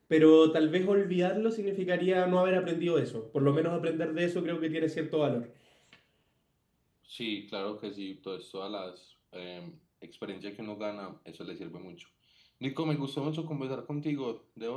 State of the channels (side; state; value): both; identical; correlation 1.00